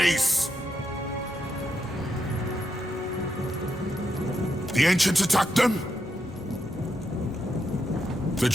The Ancients attacked them? The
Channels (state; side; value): normal; both; correlation 0.82